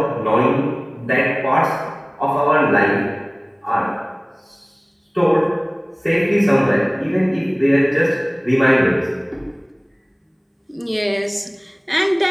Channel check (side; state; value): both; identical; correlation 1.00